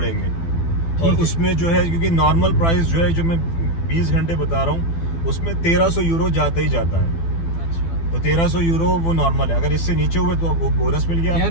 और उसमें जो है, क्योंकि नॉर्मल प्राइस जो है, जो मैं 20 घंटे बता रहा हूँ, उसमें 1300 यूरो जाता ही जाता है। अच्छा। तो 1300 यूरो वो नॉर्मल है। अगर इससे नीचे हुए तो आपको बोनस मिल गया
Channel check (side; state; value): right; late; 12 ms